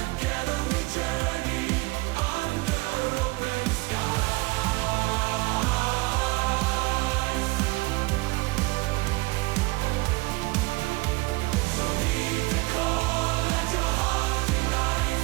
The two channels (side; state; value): left; quieter; 23.8 dB